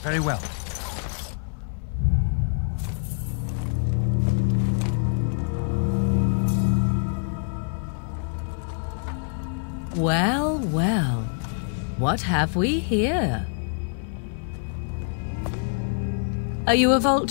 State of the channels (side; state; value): right; silent; 62 dB below the other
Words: Very well. Well, well. What have we here? Are you a